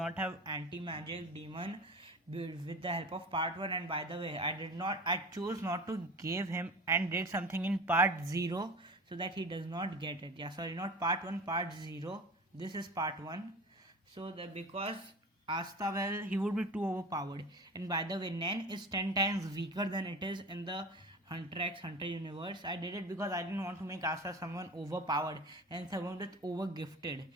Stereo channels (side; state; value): both; normal; correlation 0.34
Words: have anti-magic demon with the help of part 1. And by the way, I chose not to give him and did something in part 0 so that he does not get it. Yeah, sorry, not part 1, part 0. This is part 1. So that because Asta, well, he would be too overpowered. And by the way, Nen is 10 times weaker than it is in the Hunter x Hunter universe. I did it because I didn't want to make Asta someone overpowered and someone with over gifted.